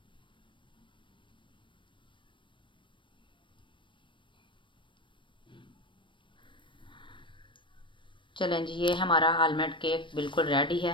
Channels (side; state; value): right; late; 0.24 ms